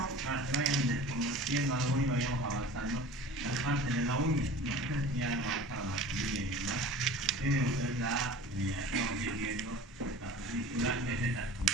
para que vayan desconociendo algo y vayamos avanzando las partes de la uña. No sé si ya hemos avanzado la familia y demás. Tienen ustedes estamos viendo la película, que es esta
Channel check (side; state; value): both; normal; correlation 0.40